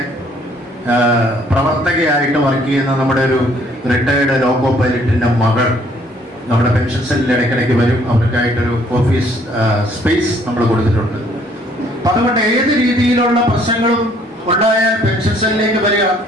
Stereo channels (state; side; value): normal; both; correlation 0.62